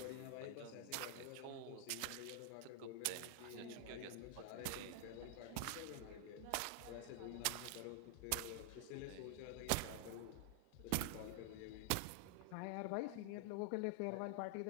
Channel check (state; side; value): different; both; correlation 0.00